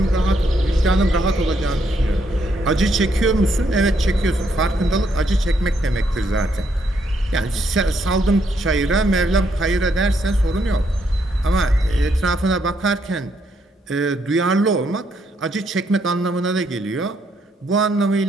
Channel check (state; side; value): normal; both; correlation 0.74